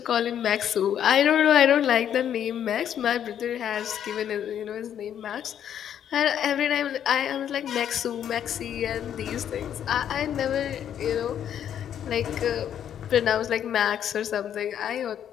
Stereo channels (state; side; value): quieter; right; 9.6 dB